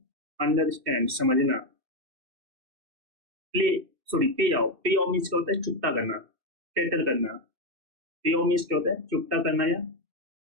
अंडरस्टैंड, समझना। प्ले सॉरी पे ऑफ। पे ऑफ मीन्स क्या होता है? चुकता करना, सेटल करना। पे ऑफ मीन्स क्या होता है? चुकता करना या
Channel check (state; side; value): late; left; 2.6 ms